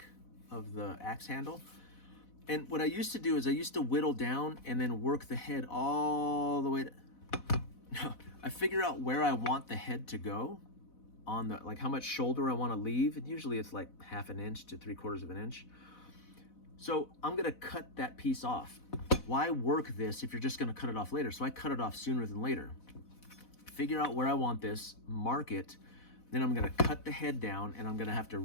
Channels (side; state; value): right; late; 4.0 ms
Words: of the axe handle. And what I used to do is I used to whittle down and then work the head all the way to... I figure out where I want the head to go on like how much shoulder I want to leave. And usually it's like 1/2 inch to 3/4 inch. So I'm gonna cut that piece off. Why work this if you're just gonna cut it off later? So I cut it off sooner than later. figure out where I want this, mark it, then I'm gonna cut the head down, and I'm gonna have to